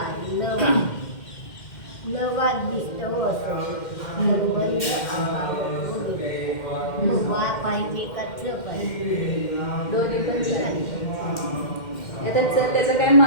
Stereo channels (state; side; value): late; right; 2.1 ms